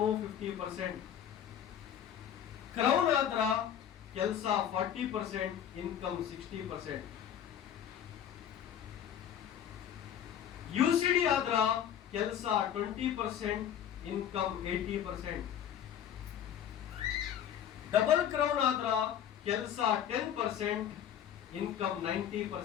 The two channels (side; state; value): right; quieter; 9.7 dB